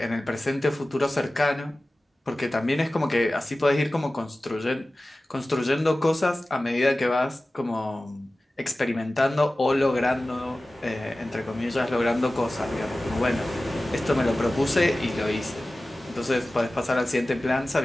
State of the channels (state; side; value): normal; both; correlation 0.96